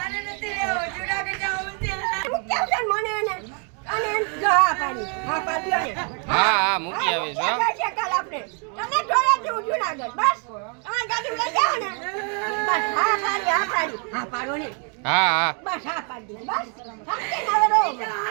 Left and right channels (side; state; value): left; quieter; 39.9 dB